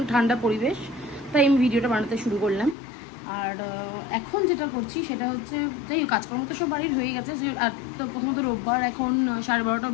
ঠান্ডা পরিবেশ, তাই আমি ভিডিওটা বানাতে শুরু করলাম। আর এখন যেটা করছি সেটা হচ্ছে, যাই হোক কাজকর্ম তো সব বাড়ির হয়ে গেছে। আর তো প্রথমত রোববার, এখন 12:30টাও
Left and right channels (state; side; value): drops out; right; at 2.8 s